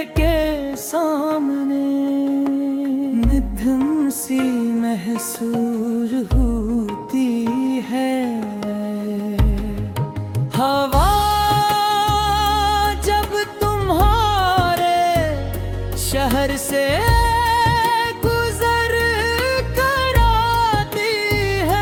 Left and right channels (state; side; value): identical; both; correlation 1.00